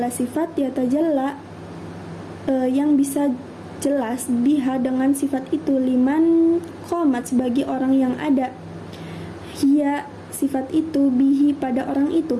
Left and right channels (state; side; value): identical; both; correlation 1.00